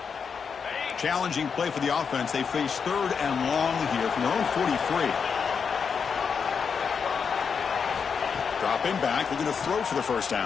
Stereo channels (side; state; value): right; quieter; 6.2 dB